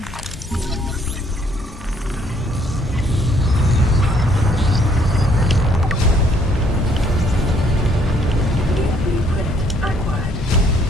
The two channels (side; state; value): both; normal; correlation 0.65